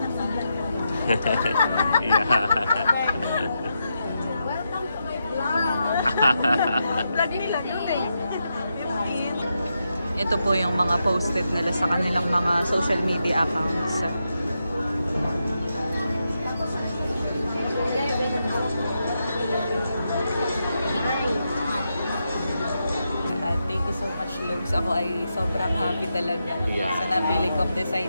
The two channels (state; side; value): inverted; both; correlation -0.85